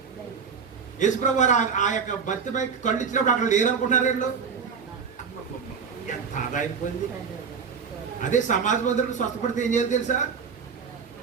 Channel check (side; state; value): left; quieter; 6.1 dB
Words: యేసు ప్రభు ఆ యొక్క భర్తపై కళ్ళు ఇచ్చినప్పుడు అక్కడ లేరనుకుంటున్నారు వీళ్ళు. ఎంత ఆదాయిపోయింది. అదే సమాజ మందిరం స్వస్థపడితే ఏం చేయాలి తెలుసా?